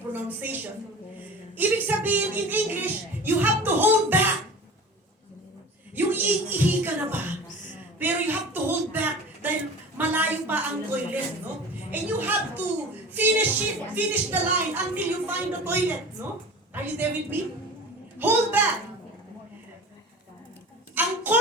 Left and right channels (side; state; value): both; normal; correlation 0.36